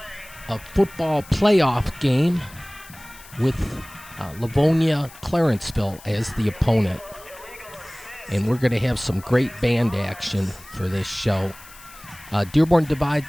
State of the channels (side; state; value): left; noise; hiss, 20 dB below the sound